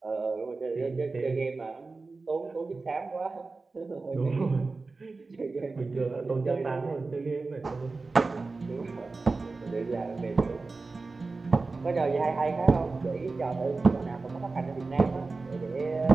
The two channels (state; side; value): quieter; left; 3.8 dB